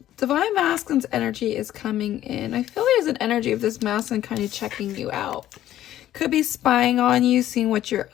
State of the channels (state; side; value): quieter; right; 12.8 dB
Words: Divine Masculine's energy is coming in. I feel there's an energy of this masculine kind of checking you out. Could be spying on you, seeing what you're